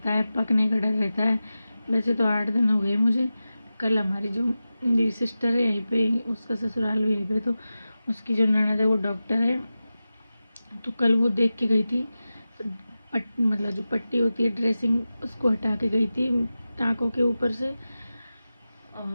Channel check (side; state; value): both; inverted; correlation -0.94